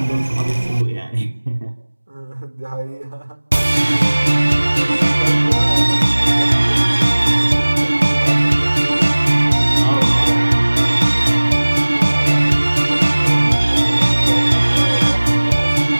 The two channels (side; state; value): both; inverted; correlation -1.00